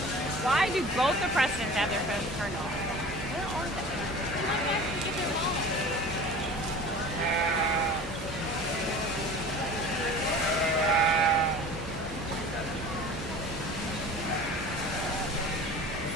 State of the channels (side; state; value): both; normal; correlation 0.39